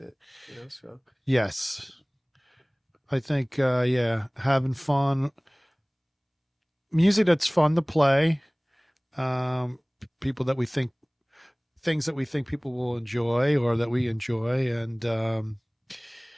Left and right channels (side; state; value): both; identical; correlation 1.00